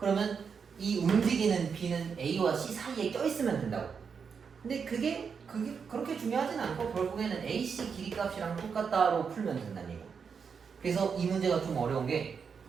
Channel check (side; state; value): left; quieter; 6.2 dB